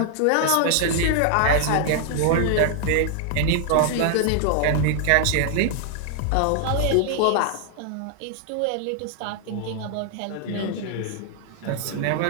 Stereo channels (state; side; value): different; both; correlation 0.00